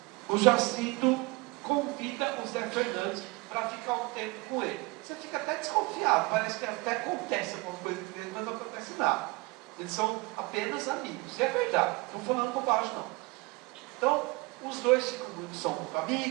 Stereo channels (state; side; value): quieter; left; 24.7 dB